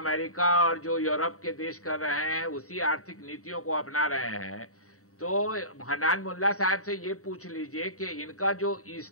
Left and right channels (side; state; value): right; late; 0.64 ms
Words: और जो यूरोप के देश कर रहे हैं, उसी आर्थिक नीतियों को अपना रहे हैं, तो हन्नान मोल्ला साहब से ये पूछ लीजिए कि इनका जो